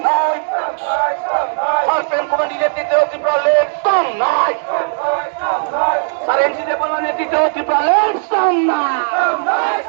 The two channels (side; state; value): left; silent; digital silence